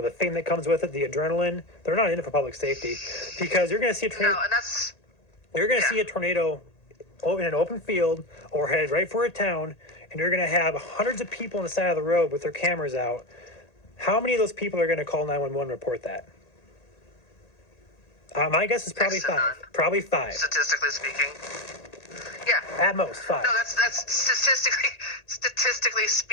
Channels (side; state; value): right; late; 1.8 ms